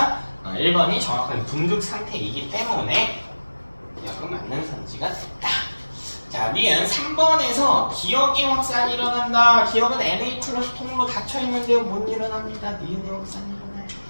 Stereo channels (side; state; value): both; inverted; correlation -1.00